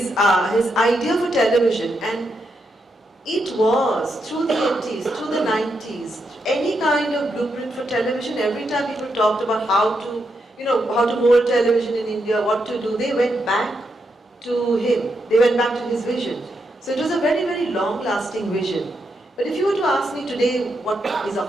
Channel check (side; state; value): both; normal; correlation 0.82